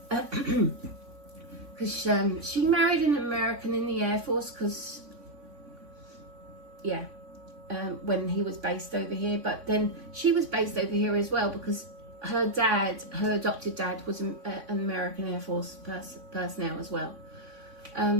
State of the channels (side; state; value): left; late; 3.5 ms